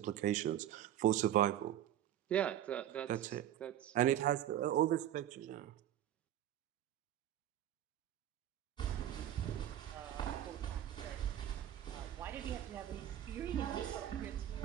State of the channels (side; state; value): left; quieter; 11.6 dB